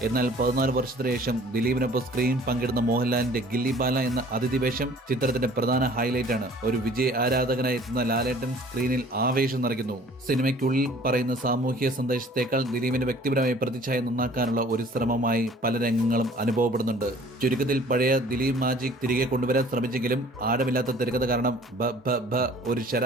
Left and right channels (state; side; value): normal; both; correlation 0.51